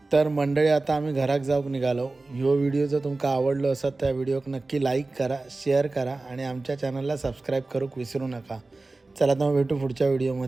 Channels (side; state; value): left; quieter; 3.3 dB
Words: तर मंडळी आता आम्ही घराक जाऊक निघालो. ह्यो व्हिडिओ जर तुमका आवडलो असत त्या व्हिडिओक नक्की लाईक करा, शेअर करा आणि आमच्या चॅनलला सबस्क्राईब करूक विसरू नका. चला तर भेटू पुढच्या